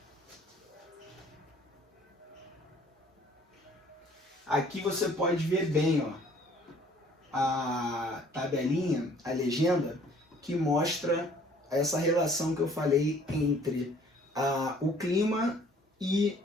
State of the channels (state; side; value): normal; both; correlation 0.57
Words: Aqui você pode ver bem, ó, a tabelinha, a legenda, que mostra essa relação que eu falei entre o clima e